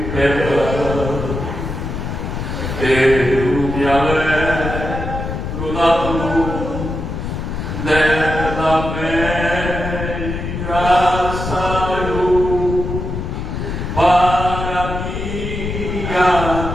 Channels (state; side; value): noise; left; rumble, 5 dB below the sound